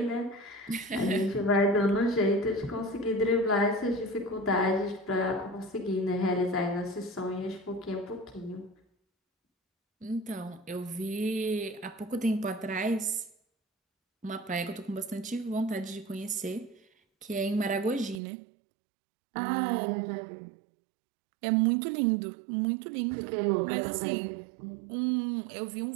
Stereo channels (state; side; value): drops out; left; at 18.2 s